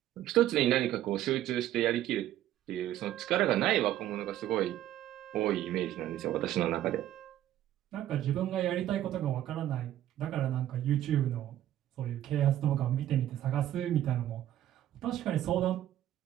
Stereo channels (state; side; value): quieter; left; 12.6 dB